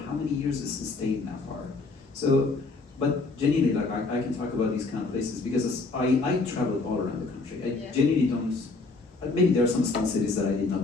how many years it's sustained that far. So, but genuinely, like I can talk about these kind of places because I traveled all around the country. I genuinely don't, maybe there are some small cities that I did not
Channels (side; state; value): right; quieter; 3.6 dB